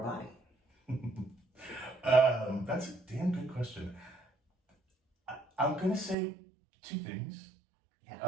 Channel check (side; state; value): left; drops out; at 6.2 s